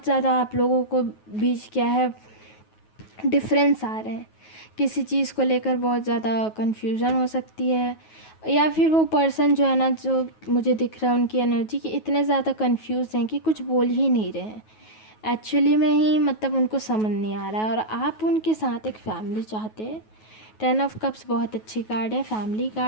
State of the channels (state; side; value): late; right; 9.3 ms